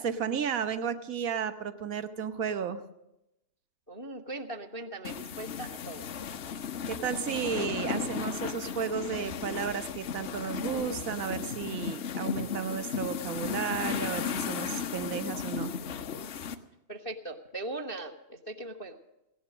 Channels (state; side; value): late; right; 3.3 ms